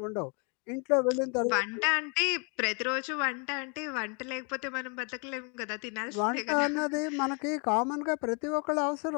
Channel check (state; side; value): quieter; right; 35.7 dB